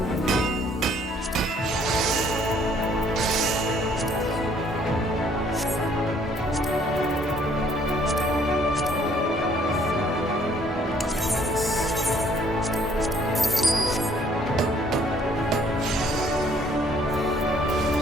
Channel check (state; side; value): normal; both; correlation 0.62